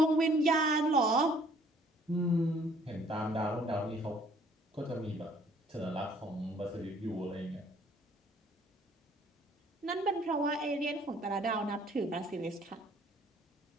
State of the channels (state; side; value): normal; both; correlation 0.59